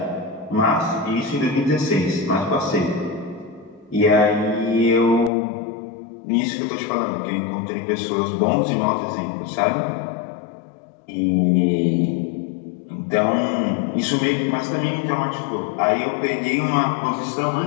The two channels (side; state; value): right; drops out; at 5.3 s